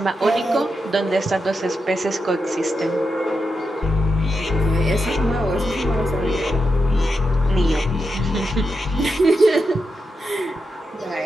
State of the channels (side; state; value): both; normal; correlation 0.86